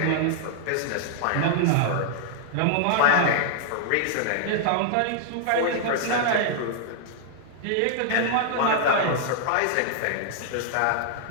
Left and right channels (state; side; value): different; both; correlation -0.01